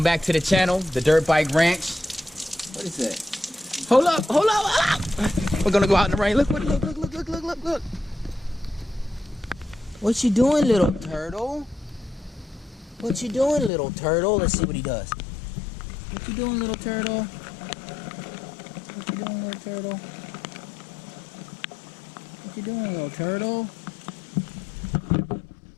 back to the channel, the Dirt Bike Ranch. What is that? Hold up, hold up, hold up. We're gonna go out in the rain. Look. What you doing, little turtle? What you doing, little turtle? Let's see what he does. What you doing, little turtle? What you doing, little turtle? What you doing, little turtle?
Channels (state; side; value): drops out; right; at 13.7 s